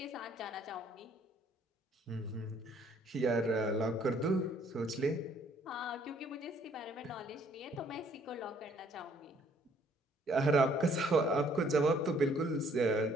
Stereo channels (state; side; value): normal; both; correlation 0.63